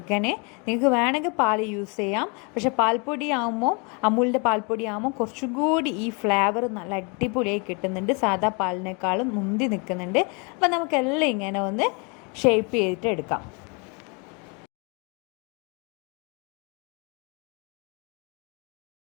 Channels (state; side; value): quieter; right; 33.1 dB